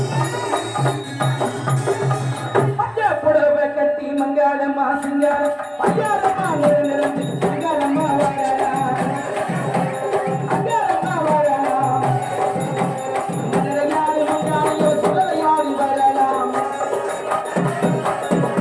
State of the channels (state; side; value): identical; both; correlation 1.00